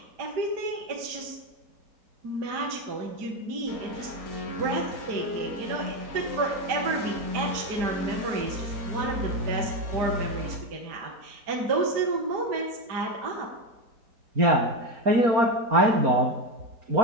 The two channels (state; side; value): late; left; 4.3 ms